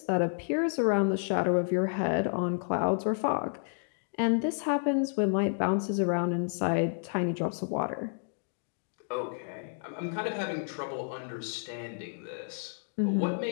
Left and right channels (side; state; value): right; silent; 57 dB below the other